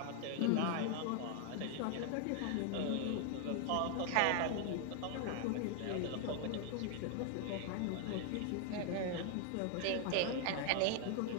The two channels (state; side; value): different; both; correlation 0.00